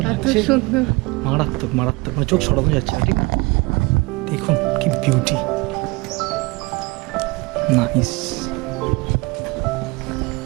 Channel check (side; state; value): left; quieter; 24.9 dB